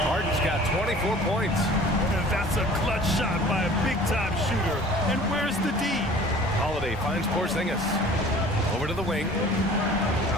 Harden's got 24 points. And That's a clutch shot by a big-time shooter. And where's the D? Holiday finds Porzingis. Over to the wing.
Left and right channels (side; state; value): both; normal; correlation 0.47